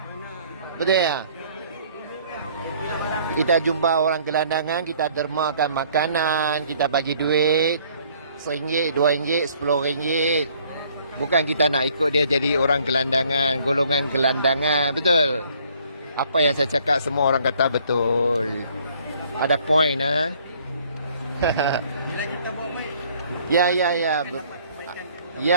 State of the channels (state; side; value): inverted; both; correlation -0.60